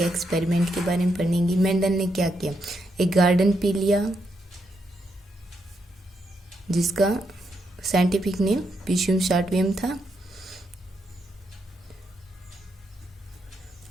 एक्सपेरिमेंट के बारे में पढ़ेंगे। मेंडल ने क्या किया, एक गार्डन पी लिया जिसका साइंटिफिक नेम पिशियम शार्टवियम था।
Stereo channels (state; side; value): normal; both; correlation 0.80